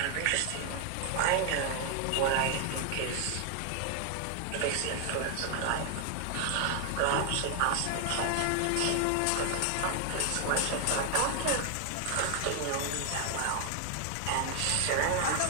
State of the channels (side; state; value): both; different; correlation 0.00